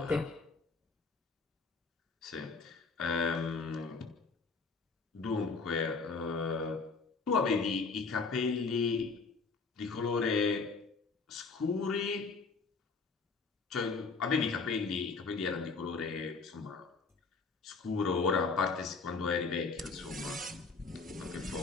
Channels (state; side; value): quieter; right; 4.4 dB